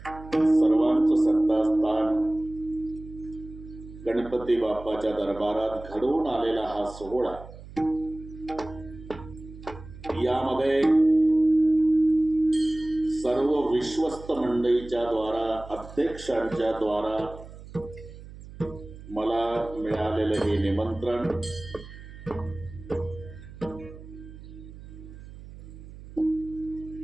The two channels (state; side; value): noise; right; hum, 16 dB below the sound